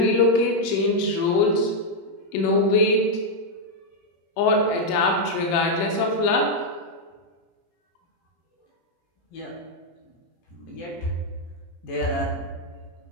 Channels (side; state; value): right; late; 17 ms